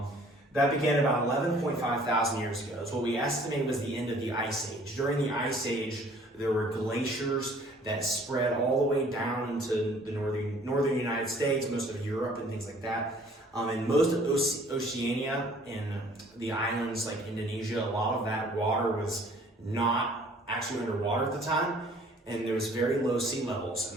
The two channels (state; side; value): normal; both; correlation 0.55